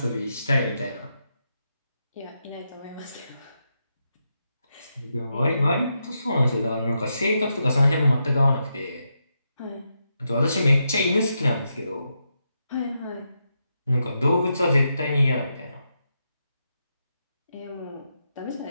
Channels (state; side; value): inverted; both; correlation -0.84